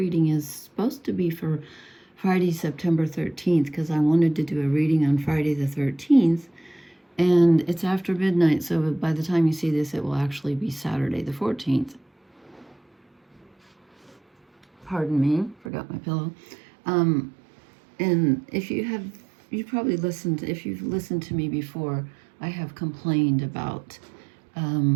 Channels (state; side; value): drops out; left; at 15.7 s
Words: is supposed to be for Friday, September 13th, because I wanted to do a reading on Friday the 13th, and it's after midnight, so by the time you see this, it will actually be Saturday the 14th. Pardon me, forgot my pillow. And if you've probably listened, if you've listened to me before, I have complained about